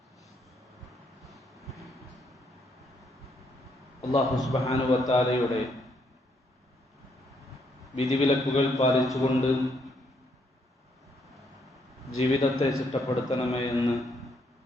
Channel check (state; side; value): normal; both; correlation 0.73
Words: അല്ലാഹു സുബ്ഹാനഹു വ തആലയുടെ വിധിവിലക്കുകൾ പാലിച്ചുകൊണ്ട് ജീവിതത്തെ ചിട്ടപ്പെടുത്തണമേ എന്ന്